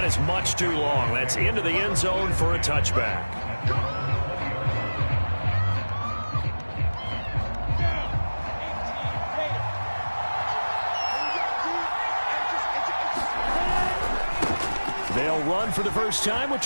is much too long. That's into the end zone for a touchback. They'll run for the first time with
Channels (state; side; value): inverted; both; correlation -1.00